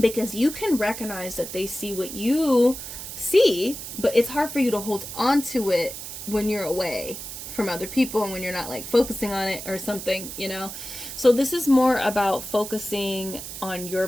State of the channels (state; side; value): noise; right; hiss, 9 dB below the sound